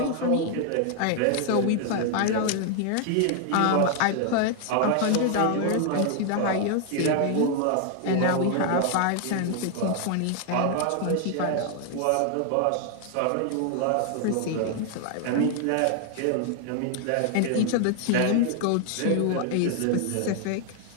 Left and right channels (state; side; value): different; both; correlation 0.00